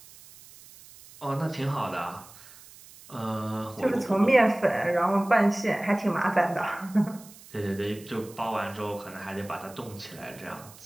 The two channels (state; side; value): noise; right; hiss, 21 dB below the sound